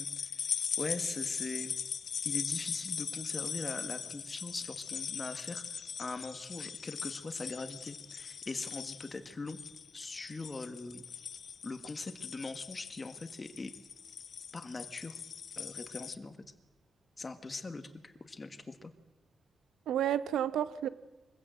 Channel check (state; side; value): normal; both; correlation 0.75